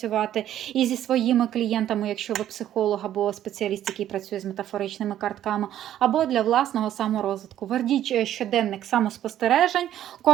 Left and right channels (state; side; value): quieter; left; 11.7 dB